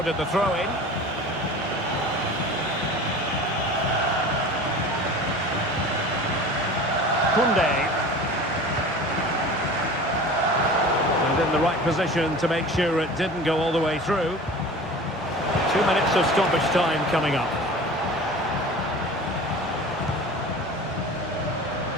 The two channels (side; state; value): both; normal; correlation 0.38